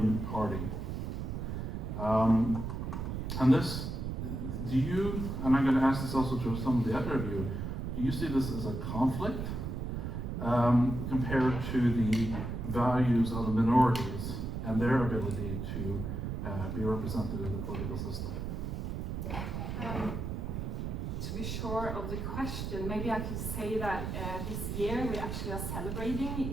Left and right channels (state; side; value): noise; right; rumble, 4 dB below the sound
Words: party. And this, do you, and I'm going to ask this also to some of the other of you, do you see this as a conflict compared to the values of the minorities and their ability to be represented in the political system? To be sure of the question, maybe I could say that this year we actually are